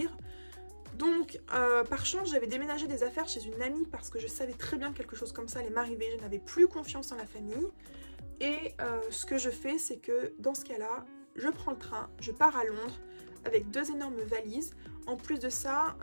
Donc par chance j'avais déménagé des affaires chez une amie parce que je savais très bien que quelque chose comme ça allait m'arriver, je n'avais plus confiance en la famille. Et ce que je fais, c'est que dans ce cas-là, je prends le train, je pars à Londres avec 2 énormes valises. En plus de ça,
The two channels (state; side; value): inverted; both; correlation -1.00